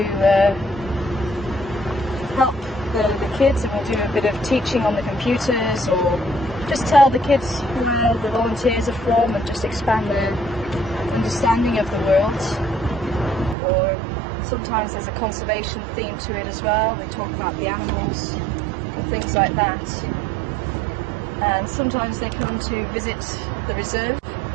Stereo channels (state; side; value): drops out; left; at 13.6 s